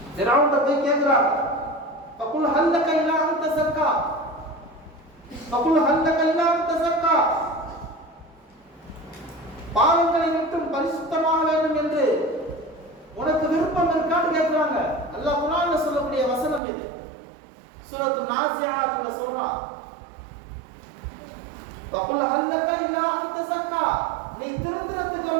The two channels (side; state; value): left; drops out; at 16.6 s